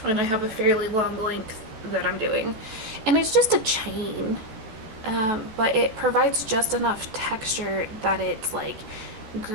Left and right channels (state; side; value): late; left; 14 ms